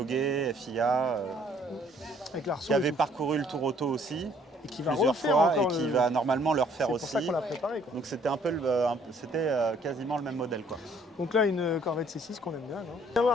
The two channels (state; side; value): normal; both; correlation 0.61